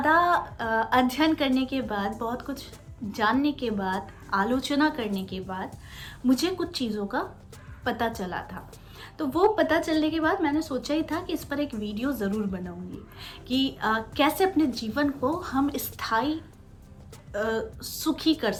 अध्ययन करने के बाद, बहुत कुछ जानने के बाद, आलोचना करने के बाद मुझे कुछ चीज़ों का पता चला था। तो वो पता चलने के बाद मैंने सोचा ही था कि इस पर एक वीडियो ज़रूर बनाऊंगी कि कैसे अपने जीवन को हम स्थायी सुखी कर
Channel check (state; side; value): identical; both; correlation 1.00